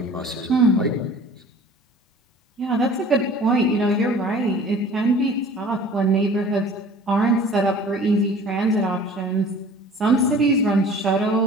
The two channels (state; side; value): normal; both; correlation 0.46